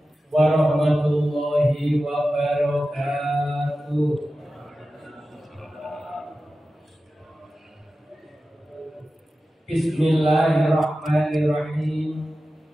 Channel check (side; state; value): both; normal; correlation 0.94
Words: warahmatullahi wabarakatuh. Bismillahirrahmanirrahim.